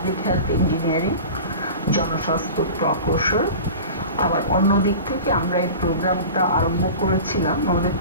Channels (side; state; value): both; inverted; correlation -0.35